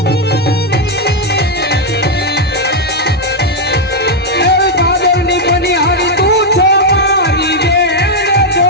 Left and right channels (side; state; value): both; normal; correlation 0.00